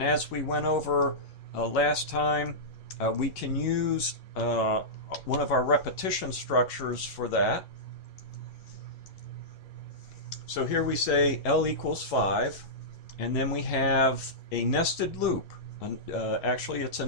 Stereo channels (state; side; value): late; right; 11 ms